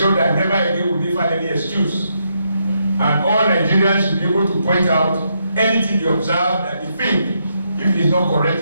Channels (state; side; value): inverted; both; correlation -0.79